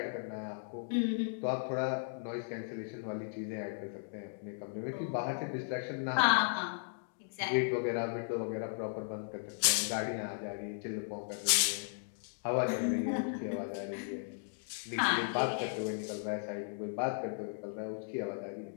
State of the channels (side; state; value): right; silent; digital silence